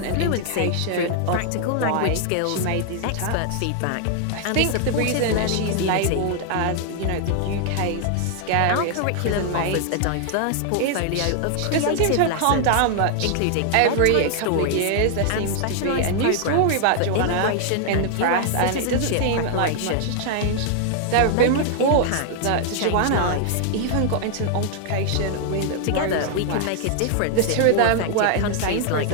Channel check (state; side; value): different; both; correlation 0.00